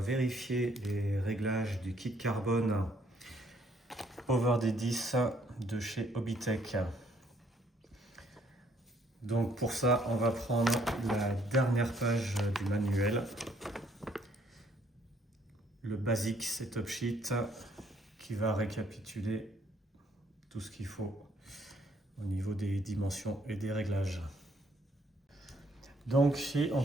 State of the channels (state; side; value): normal; both; correlation 0.66